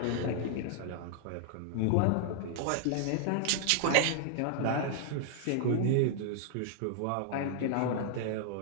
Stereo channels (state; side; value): different; both; correlation -0.01